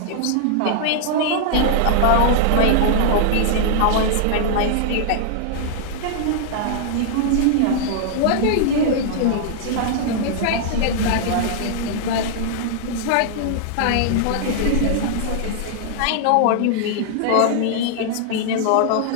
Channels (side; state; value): both; different; correlation -0.01